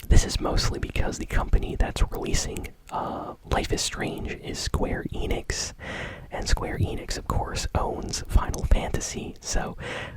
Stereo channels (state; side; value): identical; both; correlation 1.00